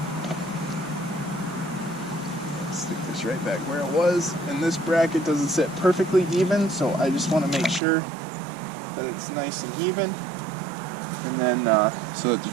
Stick this right back where it was. And this bracket doesn't sit perfectly even, so I just want to make sure that it's nice and even. And then so that the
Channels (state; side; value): drops out; left; at 7.8 s